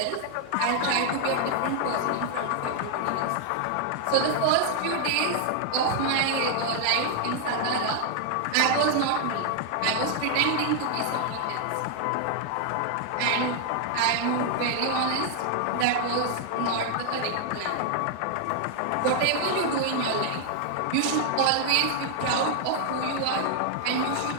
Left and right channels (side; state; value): both; different; correlation 0.00